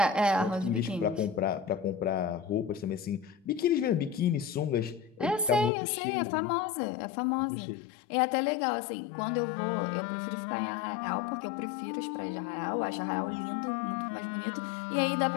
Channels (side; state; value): right; drops out; at 5.7 s